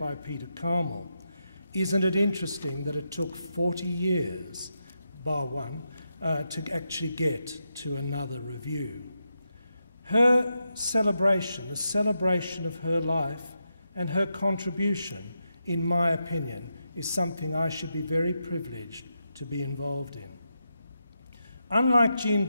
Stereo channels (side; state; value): both; inverted; correlation -0.86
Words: Peter Carmel. Isn't it interesting that it took 40 years, bar one, to actually get to another review? Her celebration, the celebration of her life and her contribution, in my opinion, is something I should be very privileged to be involved in. Unlike Jean